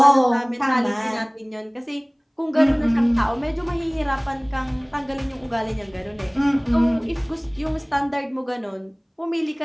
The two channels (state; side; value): identical; both; correlation 1.00